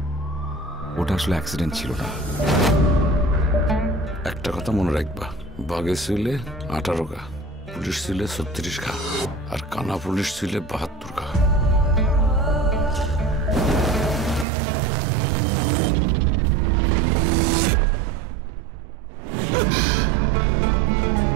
ওটা আসলে অ্যাক্সিডেন্ট ছিল না। একটা কথা মনে রাখবা, বাঘে ছিলে 18 গা, পুলিশ ছিলে 36 গা, আর কানা পুলিশ ছিলে 72 গা।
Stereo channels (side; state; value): left; drops out; at 14.5 s